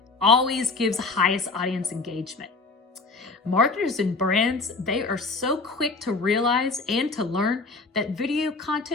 always gives highest audience engagement. Marketers and brands, they are so quick to realize and to learn that video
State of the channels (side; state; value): right; quieter; 3.8 dB